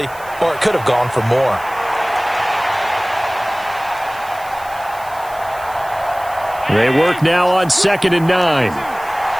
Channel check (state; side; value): noise; right; hiss, 21 dB below the sound